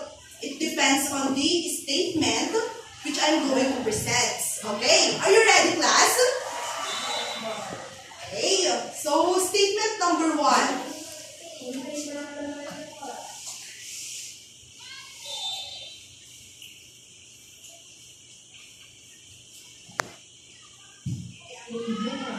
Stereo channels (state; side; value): identical; both; correlation 1.00